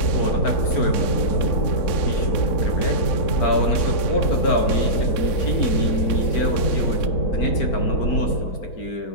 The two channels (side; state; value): right; late; 4.4 ms